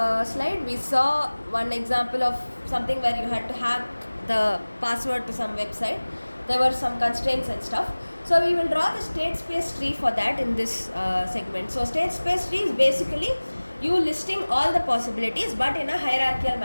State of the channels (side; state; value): both; inverted; correlation -1.00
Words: we saw one example of something where you had to hack the password to some website. There were some constraints and stuff. So we will draw the state space tree for that in this segment. So state space tree is basically you listing all the possibilities but in a hierarchical